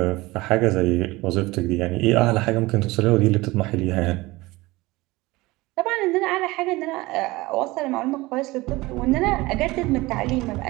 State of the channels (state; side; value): quieter; left; 20.7 dB